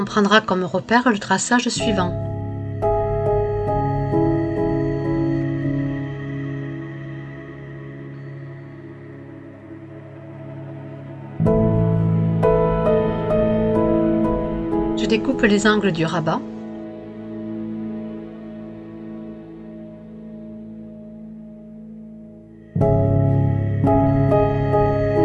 prendra comme repère le traçage suivant. Je découpe les angles du rabat.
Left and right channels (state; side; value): identical; both; correlation 1.00